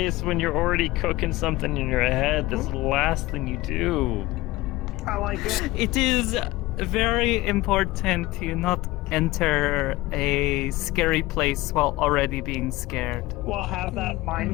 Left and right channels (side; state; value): right; quieter; 19.0 dB